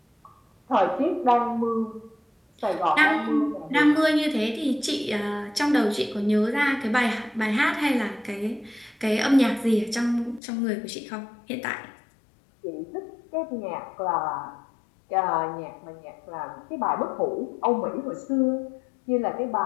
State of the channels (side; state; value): right; drops out; at 10.4 s